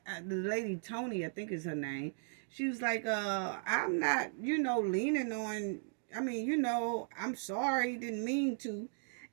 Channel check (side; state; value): left; silent; digital silence